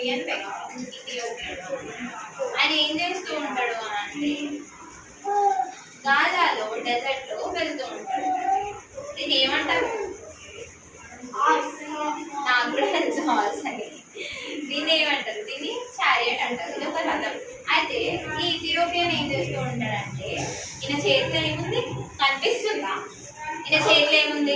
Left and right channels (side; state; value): both; identical; correlation 1.00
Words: వ్యక్తి. ఆయన ఏం చేస్తూ ఉంటాడు అని అంటే గాజాలో డెజర్ట్లో వెళ్తూ ఉంటాడు. దీన్ని ఏమంటారు? నాకు కూడా హార్స్ అని. దీన్ని ఏమంటారు? దీన్ని చారియట్ అంటారు. ఇది ఒక రథం. అయితే ఈ ఇథియోపియన్ ఏం చేస్తూ ఉంటాడంటే ఈయన చేతిలో ఏముంది కనిపిస్తుందా? ఈయన చేతిలో